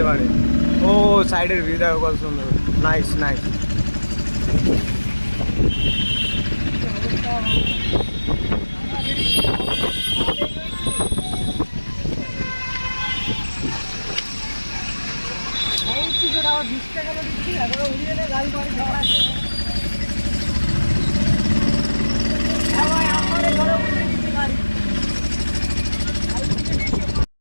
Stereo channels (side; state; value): both; inverted; correlation -1.00